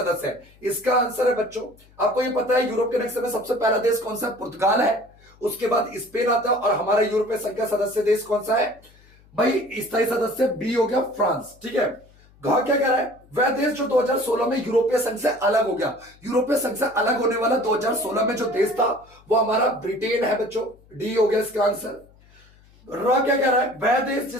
है, इसका आंसर है बच्चों। आपको ये पता है यूरोप के नक्शे में सबसे पहला देश कौन सा है? पुर्तगाल है। उसके बाद स्पेन आता है। और हमारा यूरोपीय संघ का सदस्य देश कौन सा है भाई? स्थायी सदस्य बी हो गया फ्रांस। ठीक है, घ क्या कह रहा है? वह देश जो 2016 में यूरोपीय संघ से अलग हो गया। यूरोपीय संघ से अलग होने वाला 2016 में जो देश था वो हमारा ब्रिटेन है बच्चों। डी हो गया इसका आंसर। र क्या कह रहा है? वह देश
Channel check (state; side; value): noise; left; hum, 28 dB below the sound